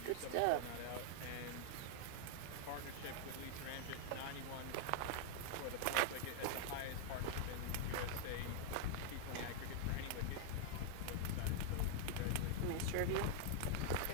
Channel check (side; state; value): both; different; correlation 0.00